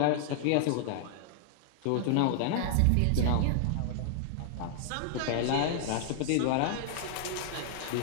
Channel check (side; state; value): both; different; correlation -0.01